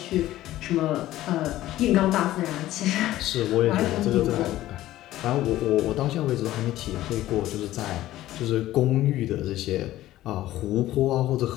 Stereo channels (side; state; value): right; quieter; 14.8 dB